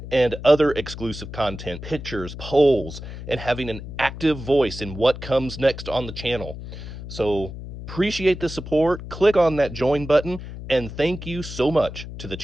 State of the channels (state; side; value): noise; left; hum, 11 dB below the sound